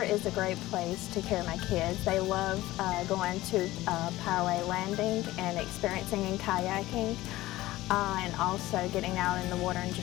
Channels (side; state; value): right; quieter; 17.1 dB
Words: is a great place to carry my kids. They love going to Poway Landing and experiencing in kayaking. And also getting out in the water and